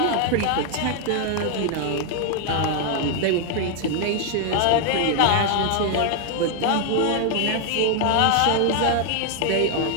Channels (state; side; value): different; both; correlation 0.00